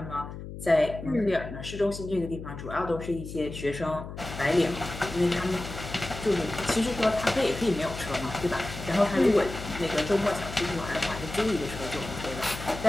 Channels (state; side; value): noise; left; hum, 10 dB below the sound